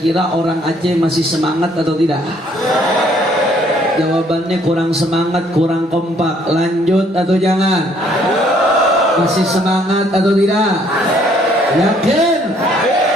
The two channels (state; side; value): normal; both; correlation 0.64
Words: orang Aceh masih semangat atau tidak? Jawabannya kurang semangat, kurang kompak. Lanjut atau jangan? Masih semangat atau tidak? Yakin?